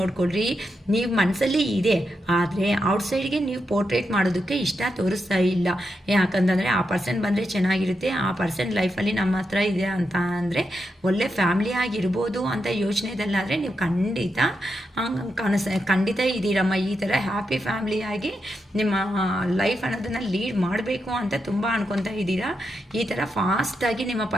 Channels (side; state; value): both; normal; correlation 0.85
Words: ನೀವು ಮನಸ್ಸಲ್ಲಿ ಇದೆ ಆದರೆ ಔಟ್ಸೈಡ್ಗೆ ನೀವು ಪೋರ್ಟ್ರೇಟ್ ಮಾಡೋದಕ್ಕೆ ಇಷ್ಟ ತೋರಿಸ್ತಾ ಇಲ್ಲ. ಯಾಕಂತಂದರೆ ಆ ಪರ್ಸನ್ ಬಂದರೆ ಚೆನ್ನಾಗಿರುತ್ತೆ, ಆ ಪರ್ಸನ್ ಲೈಫಲ್ಲಿ ನಮ್ಮ ಹತ್ರ ಇದೆ ಅಂತ ಅಂದರೆ ಒಳ್ಳೆ ಫ್ಯಾಮಿಲಿ ಆಗಿರ್ಬೋದು ಅಂತ ಯೋಚನೆದಲ್ಲಾದರೆ ನೀವು ಖಂಡಿತ ಇದ್ದೀರಮ್ಮ. ಈ ಥರ ಹ್ಯಾಪಿ ಫ್ಯಾಮಿಲಿಯಾಗಿ ನಿಮ್ಮ ಲೈಫ್ ಅನ್ನೋದನ್ನು ಲೀಡ್ ಮಾಡಬೇಕು ಅಂತ ತುಂಬ ಅನ್ಕೊತಾ ಇದ್ದೀರಾ. ಈ ಥರ ಫಾಸ್ಟಾಗಿ ನಿಮ್ಮ